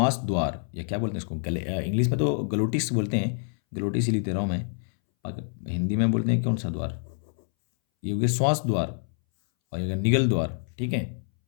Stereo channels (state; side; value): silent; right; 60 dB below the other